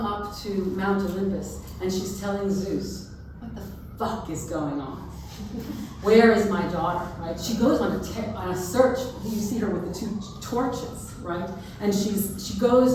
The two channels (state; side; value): identical; both; correlation 1.00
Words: to Mount Olympus and she's telling Zeus, what the fuck is going on? Where is my daughter, right? She goes on a search. You see her with the two torches, right? And she